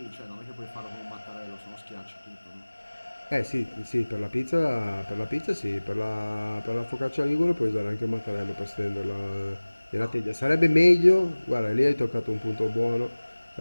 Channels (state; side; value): inverted; both; correlation -1.00